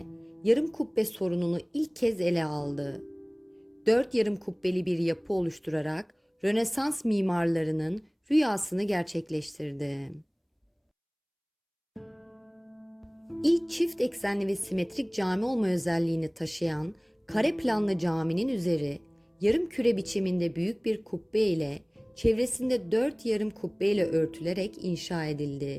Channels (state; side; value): identical; both; correlation 1.00